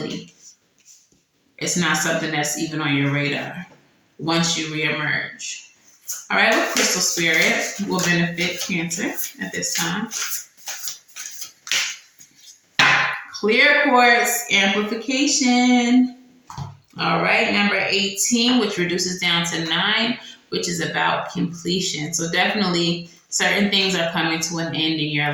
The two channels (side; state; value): both; identical; correlation 1.00